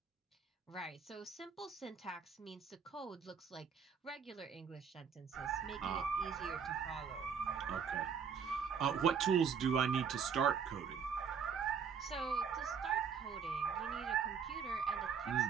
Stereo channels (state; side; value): quieter; left; 6.6 dB